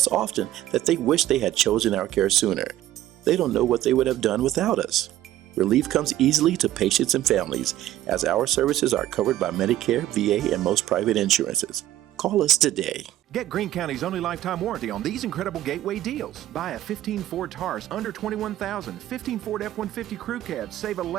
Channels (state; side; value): quieter; left; 13.7 dB